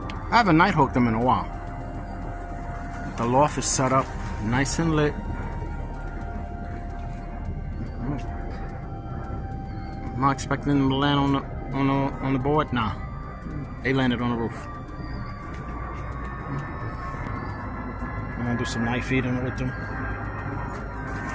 I haven't night hooked them in a while. The loft is set up nice and lit. I'm not expecting them to land on the board. Nah, they landed on the roof. I'm gonna do some night feeding with them.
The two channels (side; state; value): both; identical; correlation 1.00